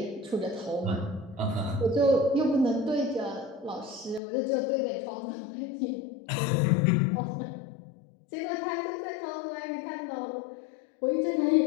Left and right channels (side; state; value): right; drops out; at 4.2 s